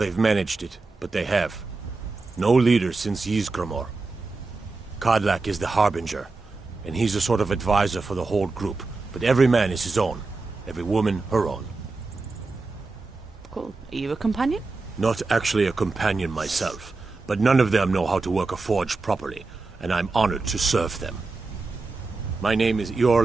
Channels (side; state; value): left; quieter; 3.7 dB